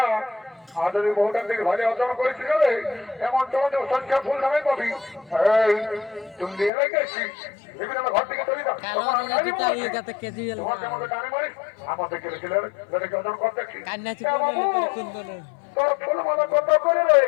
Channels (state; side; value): drops out; right; at 6.7 s